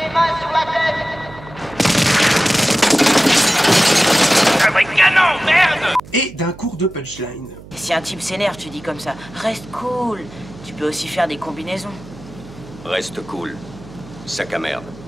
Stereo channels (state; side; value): noise; right; hum, 18 dB below the sound